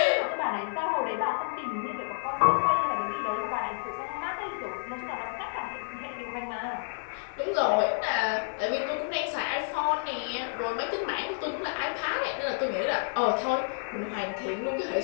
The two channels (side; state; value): right; silent; digital silence